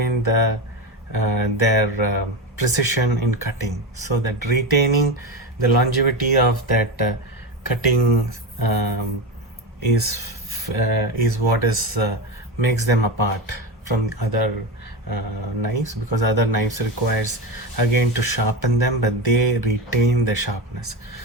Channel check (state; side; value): normal; both; correlation 0.18